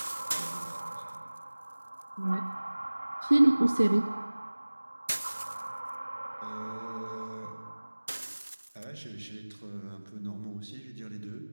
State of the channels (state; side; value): inverted; both; correlation -1.00